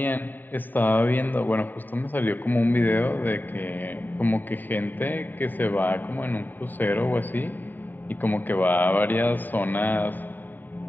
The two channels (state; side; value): late; right; 0.090 ms